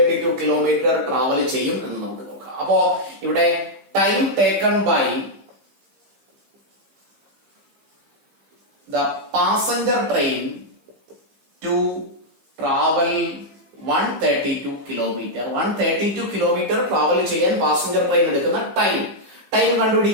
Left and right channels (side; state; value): left; late; 15 ms